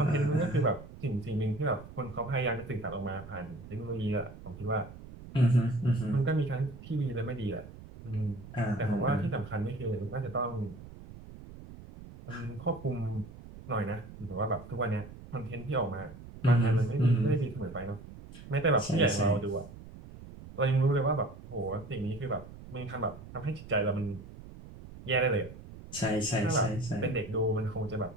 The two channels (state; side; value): noise; right; rumble, 16 dB below the sound